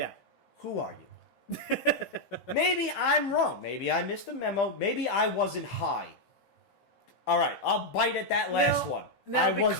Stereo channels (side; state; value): right; late; 15 ms